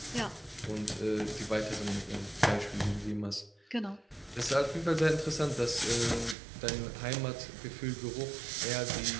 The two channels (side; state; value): left; drops out; at 6.4 s